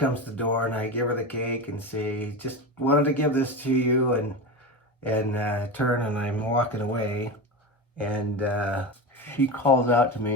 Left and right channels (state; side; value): normal; both; correlation 0.23